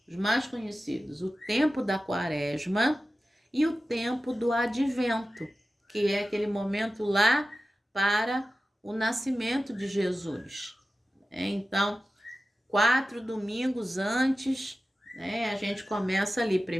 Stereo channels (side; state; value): both; normal; correlation 0.94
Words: os mais conhecidos, o tempo da Quaresma e o tempo do Advento, que é aquele momento lá para o nascimento de Jesus. Então, 4 domingos antes, a gente começa ali,